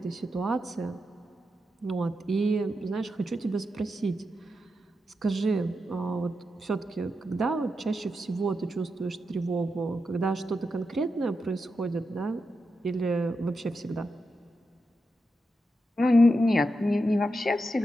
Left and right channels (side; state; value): both; normal; correlation 0.87